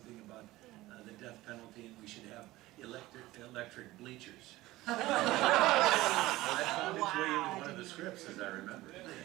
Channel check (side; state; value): left; quieter; 17.9 dB